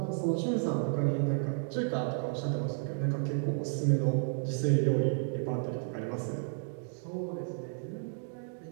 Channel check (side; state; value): left; silent; digital silence